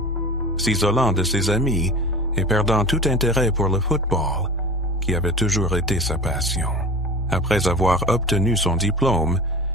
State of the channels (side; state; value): both; normal; correlation 0.35